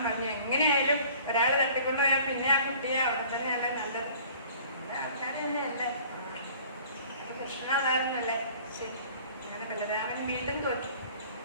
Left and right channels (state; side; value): inverted; both; correlation -0.50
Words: പറഞ്ഞു, എങ്ങനെയായാലും ഒരാൾ തട്ടിക്കൊണ്ടുപോയാൽ പിന്നെ ആ കുട്ടിയെ അവിടെ തന്നെയാണ് നല്ലത്. ആൾക്കാരെ തന്നെയല്ലേ. കൃഷ്ണൻ അതായിരുന്നല്ലേ. ശരി. അങ്ങനെ ബലരാമൻ വീണ്ടും തോറ്റു.